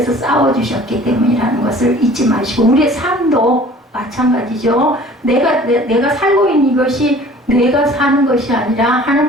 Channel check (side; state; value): both; normal; correlation 0.48